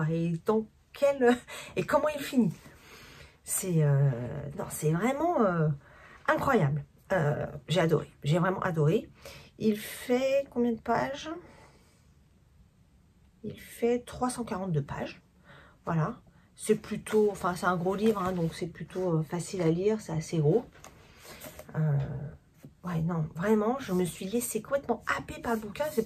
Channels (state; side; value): identical; both; correlation 1.00